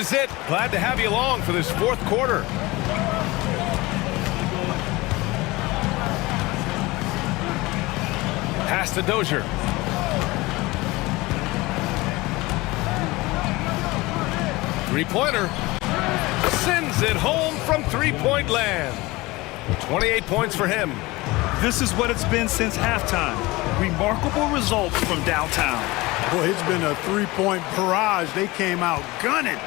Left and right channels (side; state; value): right; quieter; 21.4 dB